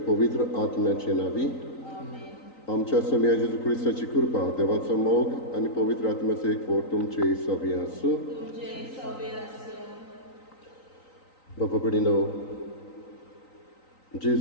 पवित्र आत्म्याचे नावी आमच्या स्वामी जेजू ख्रिस्ताची कृपा देवाचो मोग आणि पवित्र आत्म्याचे एक फोड तुमचे सवी आसूं. बापा कडेनो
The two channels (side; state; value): right; late; 3.9 ms